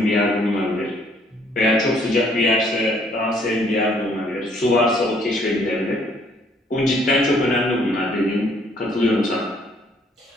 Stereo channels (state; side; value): normal; both; correlation 0.64